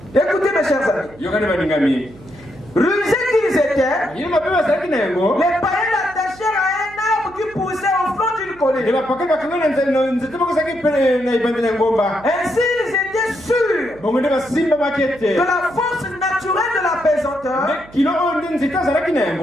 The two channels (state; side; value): noise; right; hum, 22 dB below the sound